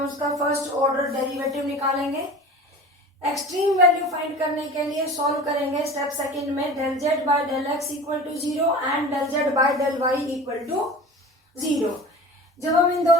उसका फर्स्ट ऑर्डर डेरिवेटिव निकालेंगे। एक्सट्रीम वैल्यू फाइंड करने के लिए सॉल्व करेंगे स्टेप सेकंड में del z by del x equal to 0 and del z by del y equal to 0। जब हम इन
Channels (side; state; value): both; normal; correlation 0.36